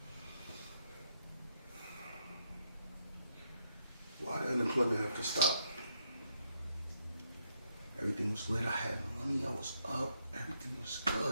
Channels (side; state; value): both; inverted; correlation -0.76